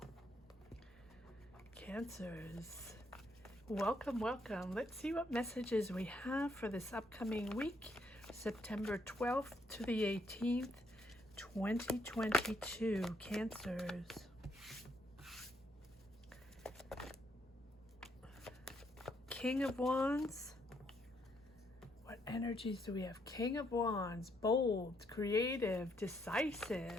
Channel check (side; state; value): both; normal; correlation 0.73